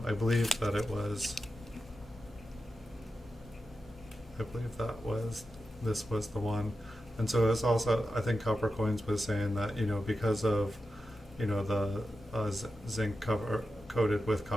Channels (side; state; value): both; normal; correlation 0.90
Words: I believe that this was the one. And so it's also, I think Copper Coins was saying that, because of, the zinc cover coated with